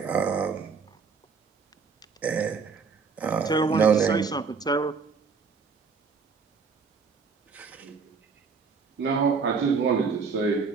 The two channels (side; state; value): left; quieter; 5.2 dB